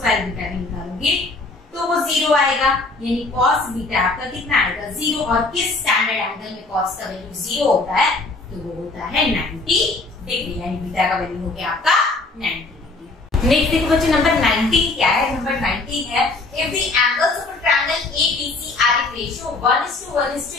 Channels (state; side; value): quieter; right; 3.3 dB